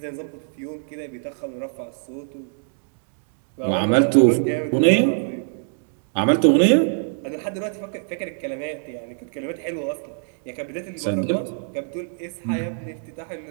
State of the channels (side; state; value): left; silent; digital silence